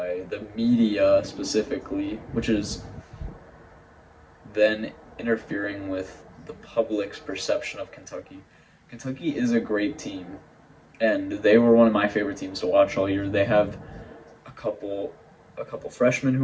the media specifically, which is then interfering with the public's perception of Kentucky. Kentucky is a great team, and they were one of my favorite teams to watch all year. They have a couple a couple freshmen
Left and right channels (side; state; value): both; identical; correlation 1.00